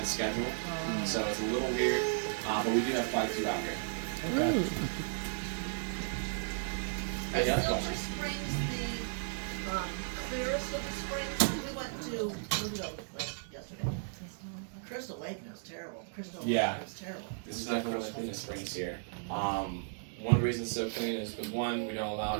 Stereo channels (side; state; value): left; silent; digital silence